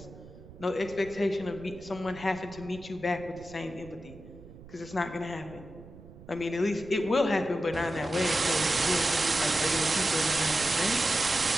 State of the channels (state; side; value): noise; right; rumble, 18 dB below the sound